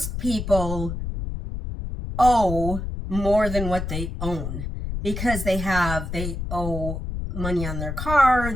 people owe more than what they own because they owe money on their car,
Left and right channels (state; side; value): noise; left; rumble, 5 dB below the sound